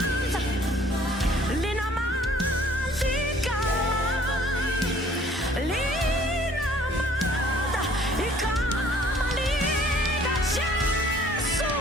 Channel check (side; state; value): both; normal; correlation 0.56